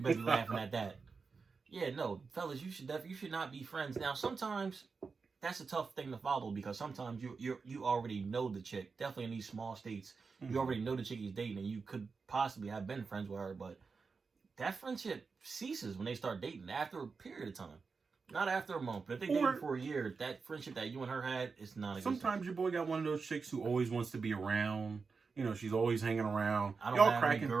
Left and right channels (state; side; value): quieter; left; 4.8 dB